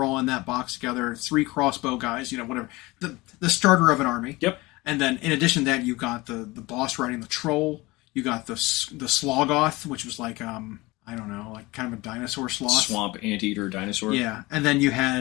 all in that box together. 3 crossbow guys, whatever. The starter of an army. Yep. And then in addition to that, you got the boss riding the troll. You got the Slogoth, which was like I don't know, like kind of a dinosaur sloth. Swamp anteater dinosaur. Yeah, and then you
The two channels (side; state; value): right; quieter; 21.8 dB